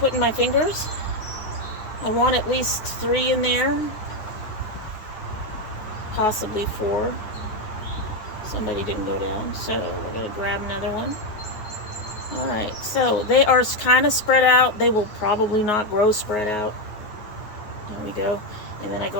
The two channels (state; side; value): late; right; 9.5 ms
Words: in my fingers. I want at least 3 in there, possibly 4. Somebody didn't go down, so we're going to grab another one. All right, so they are kind of spread out. They will probably not grow spread out. There we go. And then I